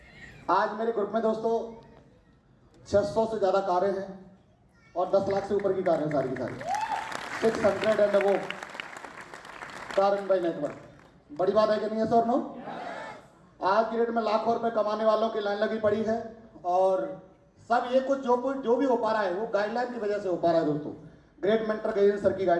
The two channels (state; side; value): identical; both; correlation 1.00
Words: आज मेरे ग्रुप में दोस्तों 600 से ज्यादा कारें हैं और 10 लाख से ऊपर की कारें सारी की सारी, 600 एंड वो दारुण भाई नेटवर्क, बड़ी बात है कि नहीं है सर? नो, आज की डेट में लाखों रुपए कमाने वालों की लाइन लगी पड़ी है और सब ये कुछ जो भी हो पा रहा है वो गाइडलाइन की वजह से हो पा रहा है दोस्तों, ग्रेट मेंटर गैजेंद्र सर की